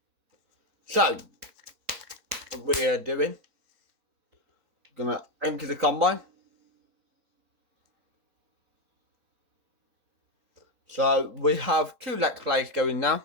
So what we are doing, gonna empty the combine. So we have 2 let's plays going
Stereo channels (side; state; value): left; late; 4.1 ms